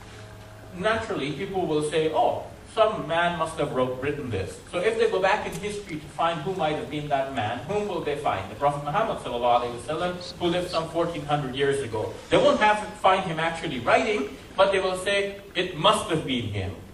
naturally people will say, oh, some man must have written this. So if they go back in history to find who might have been that man, whom will they find? The Prophet Muhammad ﷺ, who lived some 1400 years ago. They won't have to find him actually writing, but they will say, it must have been him.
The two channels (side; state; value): both; identical; correlation 1.00